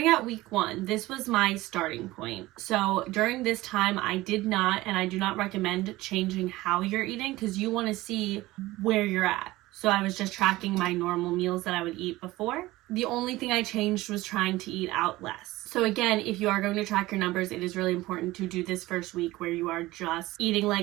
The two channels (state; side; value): quieter; left; 18.4 dB